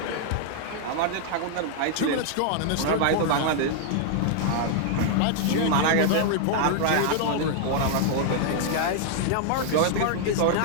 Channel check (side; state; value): both; different; correlation 0.00